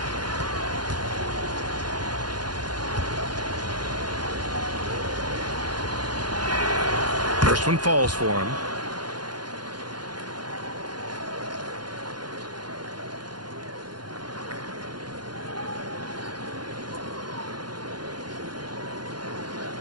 First one falls for him.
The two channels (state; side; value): late; left; 0.71 ms